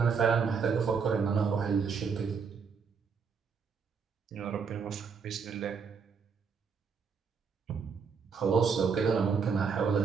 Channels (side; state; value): left; quieter; 5.9 dB